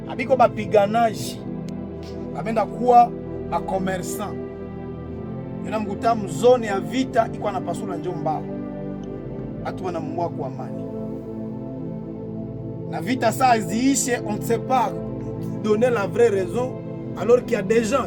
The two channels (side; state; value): both; identical; correlation 1.00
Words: Abiko bapiganaji. Abenda kuwa ba commerçant. Yana mkuta mzone ya vita iko na pasula njomba. Watu wanamua kwa amani. La vita ça ziishe, on ne sait pas donner la vraie raison alors qu'il y a des